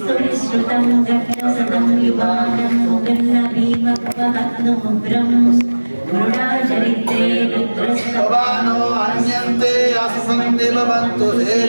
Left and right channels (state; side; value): inverted; both; correlation -1.00